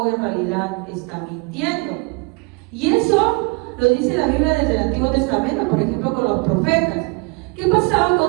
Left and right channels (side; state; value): left; quieter; 29.0 dB